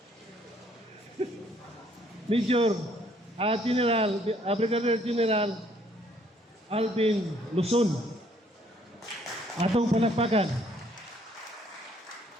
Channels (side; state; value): both; normal; correlation 0.64